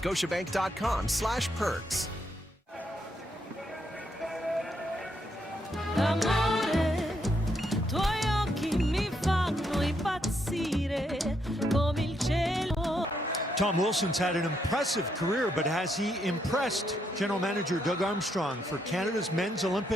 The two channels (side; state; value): both; normal; correlation 0.77